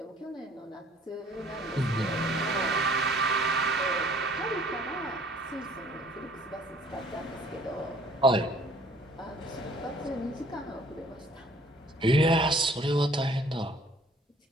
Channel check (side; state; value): both; normal; correlation 0.56